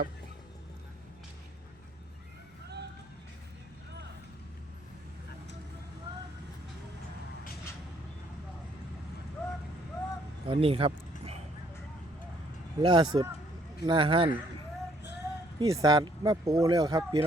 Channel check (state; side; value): normal; both; correlation 0.66